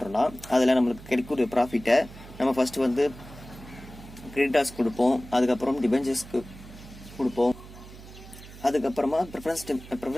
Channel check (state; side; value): noise; right; hum, 17 dB below the sound